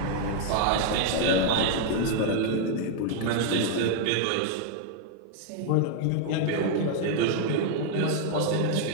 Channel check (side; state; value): both; different; correlation 0.00